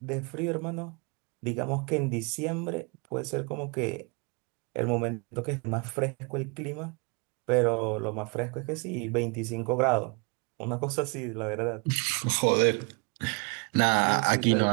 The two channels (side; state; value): left; quieter; 31.8 dB